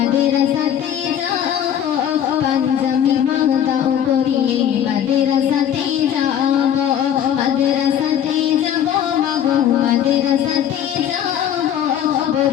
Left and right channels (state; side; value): quieter; right; 9.7 dB